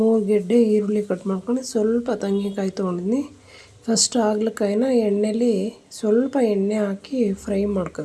ಗೆಡ್ಡೆ ಈರುಳ್ಳಿ ಕಟ್ ಮಾಡ್ಕೊಂಡು, ಸ್ವಲ್ಪ ತೆಂಗಿನಕಾಯಿ ತೊಗೊಂಡಿದ್ದೀನಿ. ಫಸ್ಟ್ ಹಾಗಲಕಾಯಿನ ಎಣ್ಣೆಲಿ ಸ್ವಲ್ಪ ಎಣ್ಣೆ ಹಾಕಿ ಫ್ರೈ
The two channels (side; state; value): both; identical; correlation 1.00